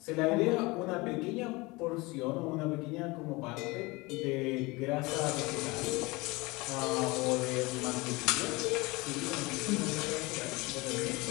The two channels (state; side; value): quieter; right; 23.8 dB